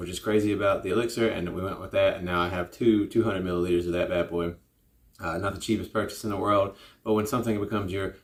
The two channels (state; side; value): identical; both; correlation 1.00